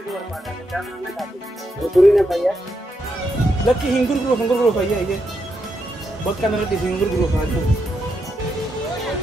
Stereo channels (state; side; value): normal; both; correlation 0.82